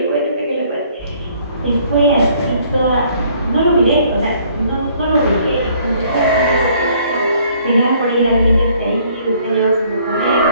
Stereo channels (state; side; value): inverted; both; correlation -0.61